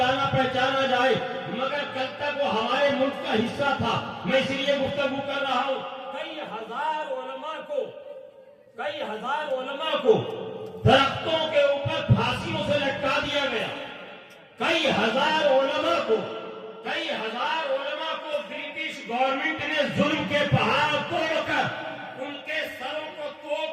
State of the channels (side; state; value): both; identical; correlation 1.00